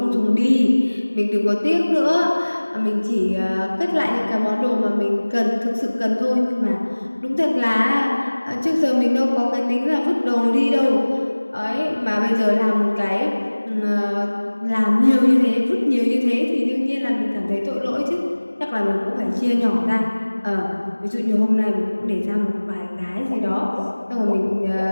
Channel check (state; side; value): inverted; both; correlation -1.00